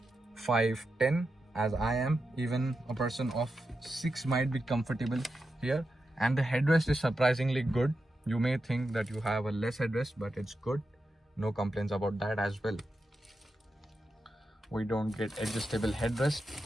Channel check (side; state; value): both; normal; correlation 0.89